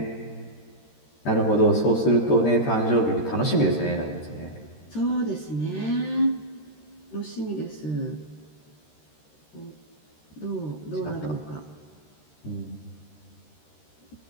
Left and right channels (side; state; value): right; late; 13 ms